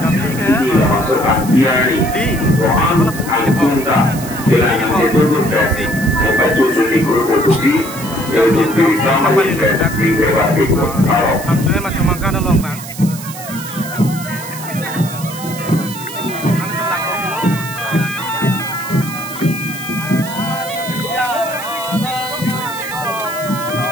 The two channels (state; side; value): noise; right; hiss, 13 dB below the sound